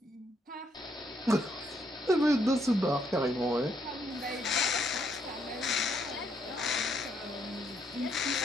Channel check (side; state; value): both; normal; correlation 0.73